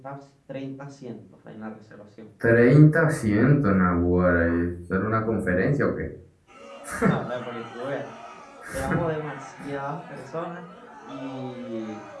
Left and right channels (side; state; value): both; identical; correlation 1.00